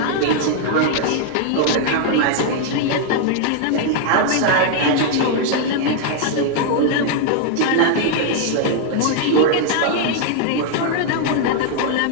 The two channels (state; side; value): different; both; correlation 0.00